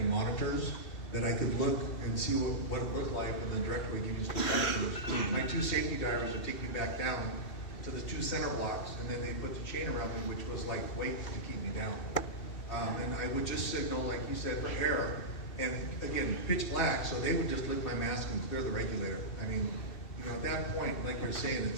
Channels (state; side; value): late; right; 2.6 ms